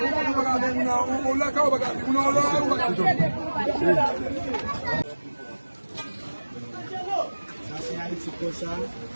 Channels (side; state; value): both; inverted; correlation -1.00